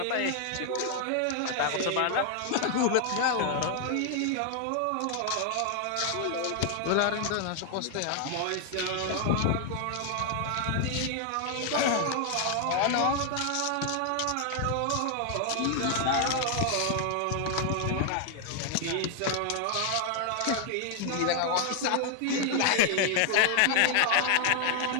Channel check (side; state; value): both; different; correlation 0.00